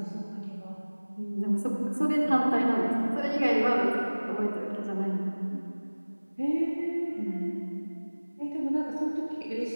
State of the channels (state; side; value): inverted; both; correlation -1.00